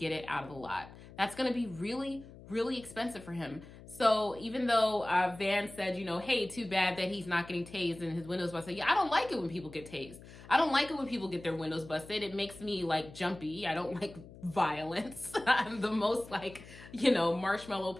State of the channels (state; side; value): noise; left; hum, 18 dB below the sound